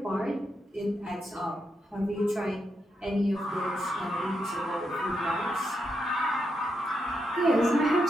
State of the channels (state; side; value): normal; both; correlation 0.83